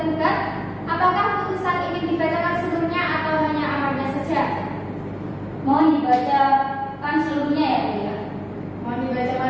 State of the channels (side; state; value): both; identical; correlation 1.00